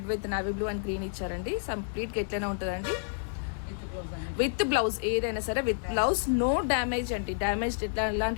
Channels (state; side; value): silent; right; 58 dB below the other